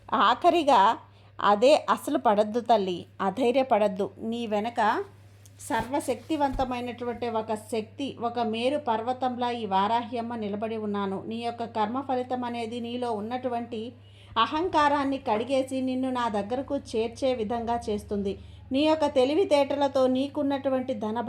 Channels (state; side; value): identical; both; correlation 1.00